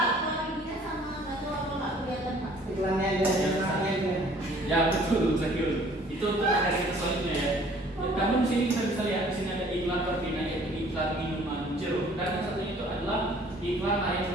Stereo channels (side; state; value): both; normal; correlation 0.55